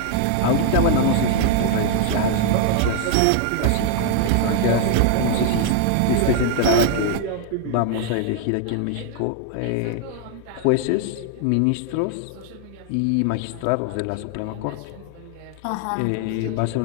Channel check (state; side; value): different; both; correlation 0.00